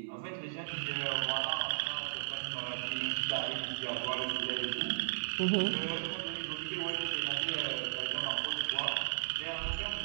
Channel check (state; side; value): silent; left; 54 dB below the other